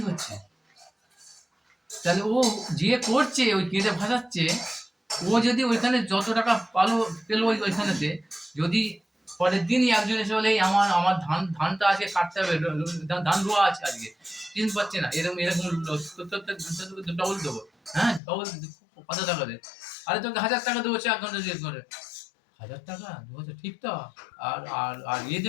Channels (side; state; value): right; drops out; at 18.2 s